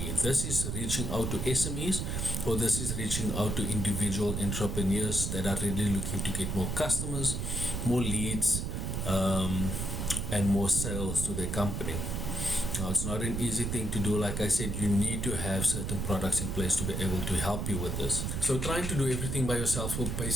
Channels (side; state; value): right; noise; rumble, 2 dB below the sound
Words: This is reaching out to SMEs, or this is reaching out to individual entrepreneurs that are really looking to get more customers, more leads, and more sales to their company. Now, it's not an easy thing to do. Like I said, you need to have certain products in place to be able to help you with this. So trying to do everything by yourself will